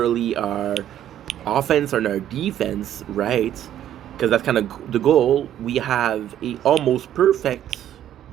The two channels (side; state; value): left; quieter; 11.0 dB